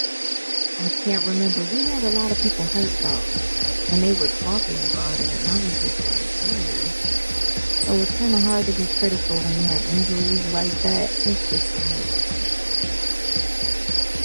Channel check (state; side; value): inverted; both; correlation -1.00